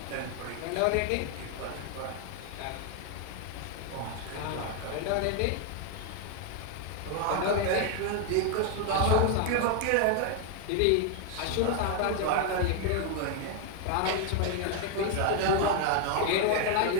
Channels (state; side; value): different; both; correlation 0.01